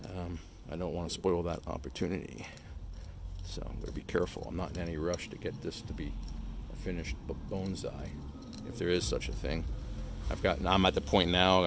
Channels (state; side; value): identical; both; correlation 1.00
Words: I don't want to spoil that opportunity, so I'm going to be careful. I'm not in any rush to get this to be a finished bonsai, if there is such a thing. I'm at the point now,